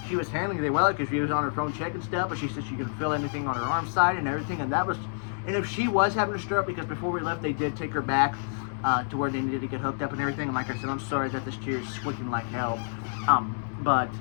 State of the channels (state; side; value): silent; right; digital silence